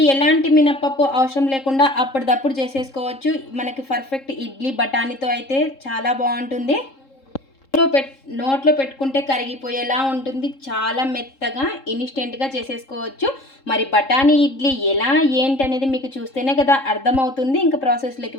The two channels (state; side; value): late; right; 3.7 ms